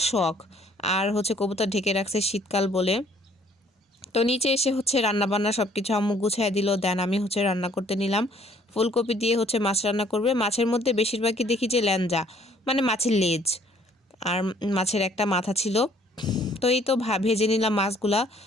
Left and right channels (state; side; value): normal; both; correlation 0.60